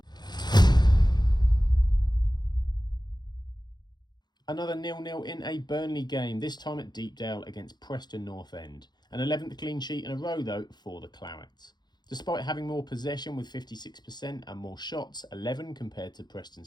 Another 0-0 in a Burnley game, this time at Deepdale against Preston North End. An 11th clean sheet in a row though for the Clarets. Despite having more possession with 56% and more shots, 11 compared to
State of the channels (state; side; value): late; right; 0.21 ms